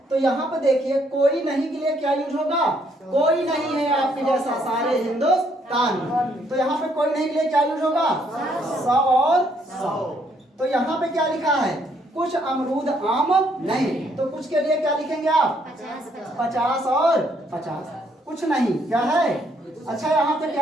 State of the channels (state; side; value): normal; both; correlation 0.69